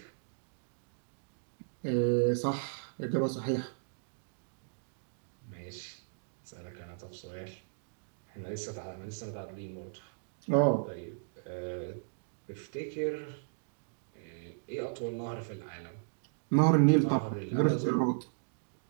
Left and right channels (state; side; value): silent; left; digital silence